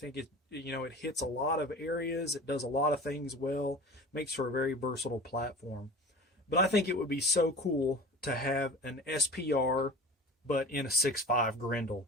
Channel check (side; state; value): both; normal; correlation 0.37